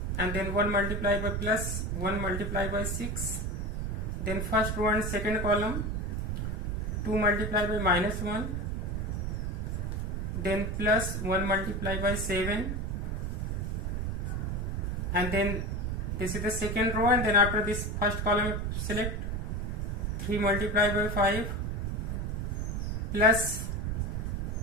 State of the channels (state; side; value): noise; right; rumble, 2 dB below the sound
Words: and then 1 multiplied by plus 1 multiplied by 6, then first row and second column, 2 multiplied by minus 1, then plus 1 multiplied by 7, and then this is the second row, and then after this first column select 3 multiplied by 5 plus